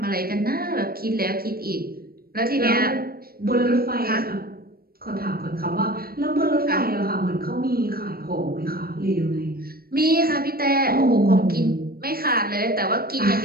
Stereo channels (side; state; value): left; late; 0.44 ms